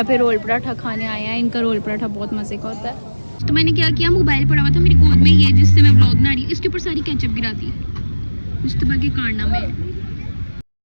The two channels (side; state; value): both; inverted; correlation -1.00